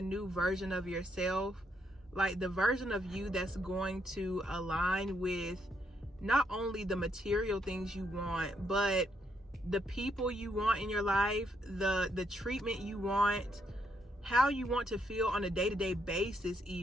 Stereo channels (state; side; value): normal; both; correlation 0.75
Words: version of yourself, like the version of you that's going to align with not only the material things you want, but the people you want in your life, the treatment you want, how you want to feel on a day-to-day basis,